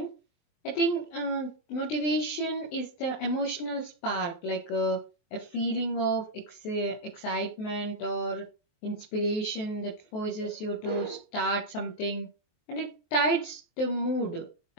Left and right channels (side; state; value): right; late; 23 ms